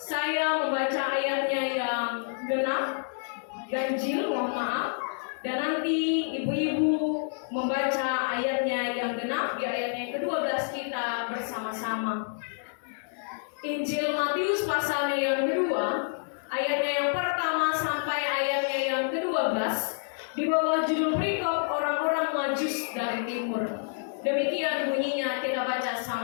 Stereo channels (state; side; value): silent; right; digital silence